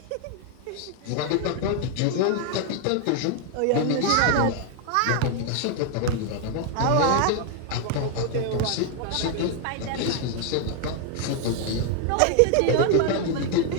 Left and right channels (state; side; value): different; both; correlation 0.01